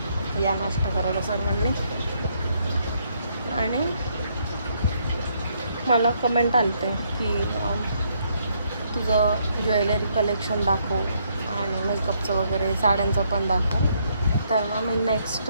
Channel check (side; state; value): both; inverted; correlation -0.72